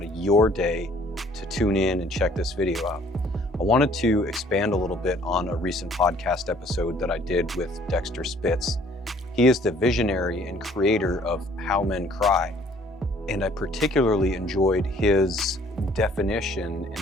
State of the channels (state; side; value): normal; both; correlation 0.58